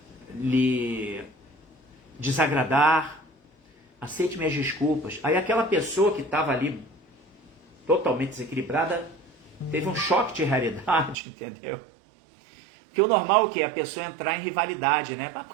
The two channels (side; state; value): left; drops out; at 11.2 s